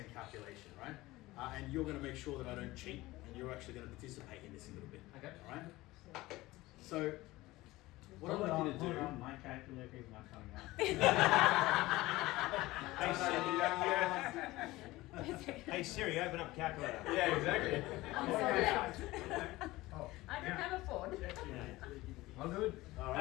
calculation, right? And you're gonna make sure that I don't cheat, and you're actually gonna participate in this a little bit. Okay. All right. So. What I'd like you to do. My calculator is not coming out. Hey Siri, open up calculator. Yeah, exactly. I don't have a phone. I'm good. All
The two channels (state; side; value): quieter; right; 18.9 dB